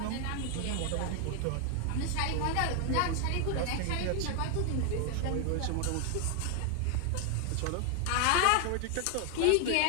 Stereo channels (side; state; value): both; different; correlation 0.00